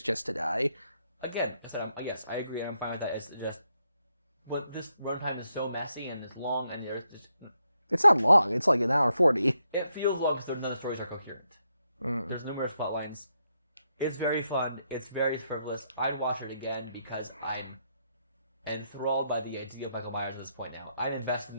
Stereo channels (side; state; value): both; inverted; correlation -0.80